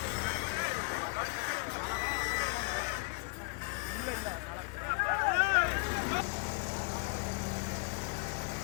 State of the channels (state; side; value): quieter; right; 34.0 dB